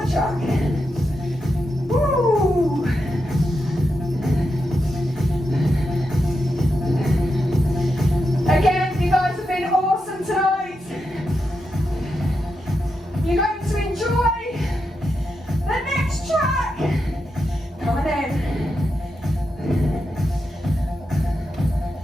track. Woo! Again, you guys have been awesome tonight. You're going to enjoy the next track. Coming in.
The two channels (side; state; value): both; normal; correlation 0.86